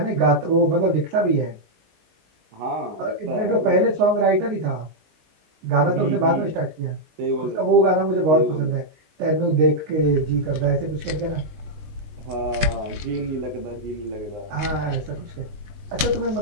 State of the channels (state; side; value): late; left; 19 ms